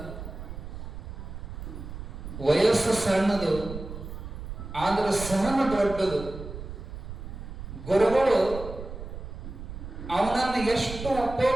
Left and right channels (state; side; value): noise; right; rumble, 10 dB below the sound